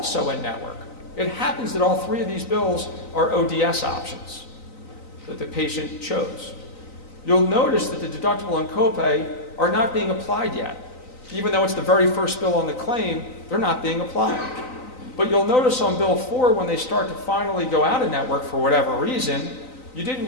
in network. It happens that all three of these bills are ODS options that the patient chose. You'll notice that the deductible and copay are not being applied yet. Even though it's the very first bill on the claim, they're not being applied. But you'll notice on Bill 4, when they start to finally go out of network for whatever reason, you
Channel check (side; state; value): right; late; 3.9 ms